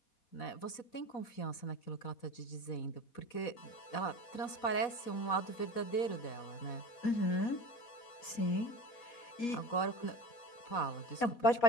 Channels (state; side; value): late; right; 4.1 ms